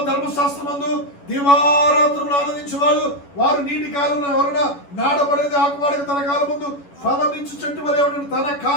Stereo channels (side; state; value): right; late; 11 ms